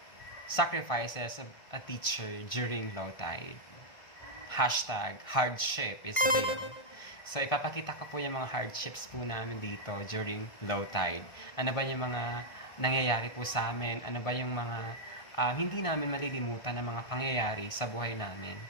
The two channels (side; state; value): right; late; 1.5 ms